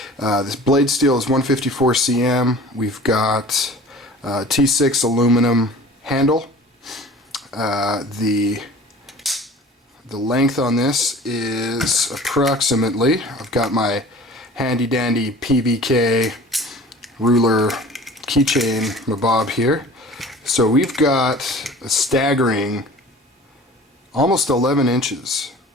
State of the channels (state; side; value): normal; both; correlation 0.43